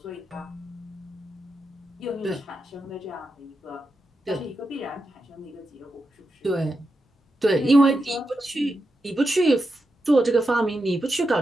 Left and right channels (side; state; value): both; normal; correlation 0.87